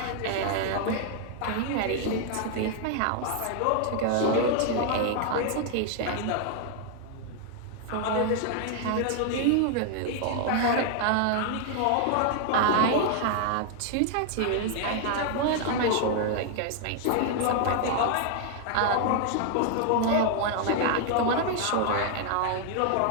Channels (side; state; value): both; different; correlation 0.00